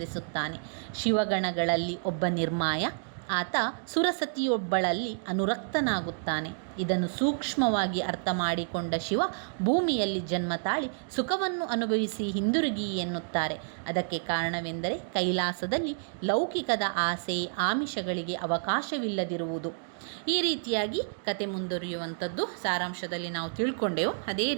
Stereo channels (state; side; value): silent; left; digital silence